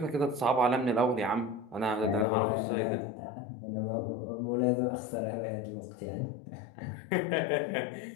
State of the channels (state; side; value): drops out; right; at 2.2 s